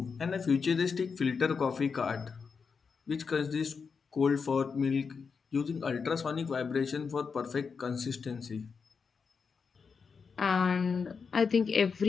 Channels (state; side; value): quieter; right; 5.5 dB